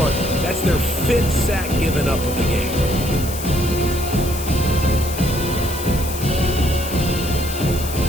That's their 5th sack given up of the game.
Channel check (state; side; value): noise; left; hiss, 10 dB below the sound